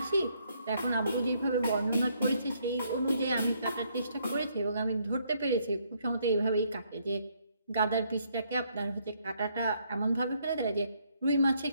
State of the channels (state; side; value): inverted; both; correlation -0.71